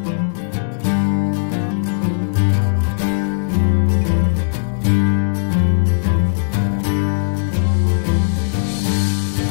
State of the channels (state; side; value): silent; right; digital silence